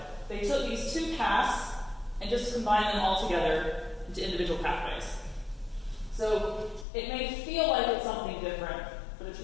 They took these two paths and just combined them all together into individual pathways. So it may feel like it's something different, but it's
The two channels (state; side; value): drops out; right; at 6.9 s